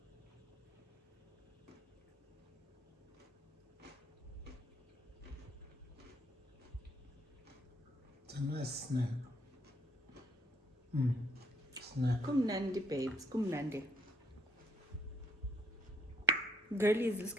nice snack. Snack. Kumnandi, babes. Kumnandi. Girlies, let's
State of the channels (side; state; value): both; normal; correlation 0.68